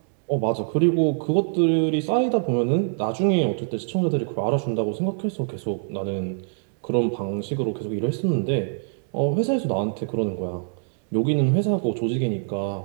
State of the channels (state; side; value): silent; left; digital silence